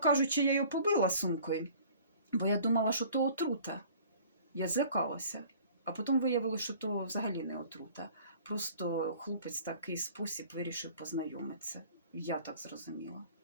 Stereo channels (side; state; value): both; inverted; correlation -0.50